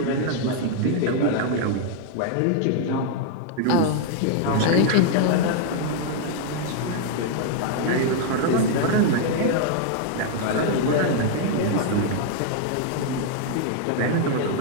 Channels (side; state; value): both; different; correlation 0.00